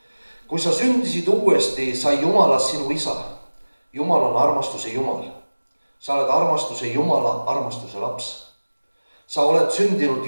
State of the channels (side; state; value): both; inverted; correlation -1.00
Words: Kui sa sündisid uuesti, sai Jumalast sinu isa. Jumal on armastuse Jumal. Sa oled armastuse Jumala armastuse laps. Sa oled sündinud